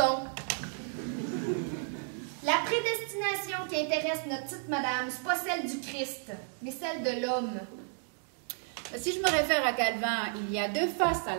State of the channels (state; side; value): silent; left; 56 dB below the other